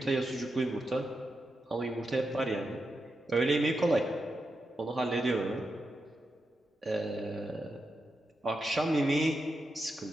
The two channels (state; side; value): normal; both; correlation 0.87